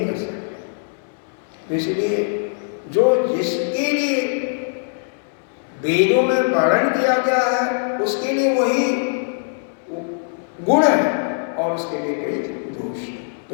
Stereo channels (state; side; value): silent; right; 63 dB below the other